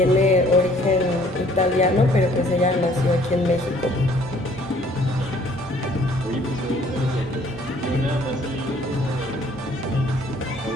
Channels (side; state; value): both; normal; correlation 0.59